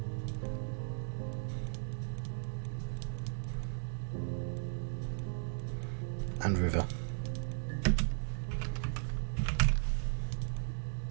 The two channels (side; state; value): left; silent; digital silence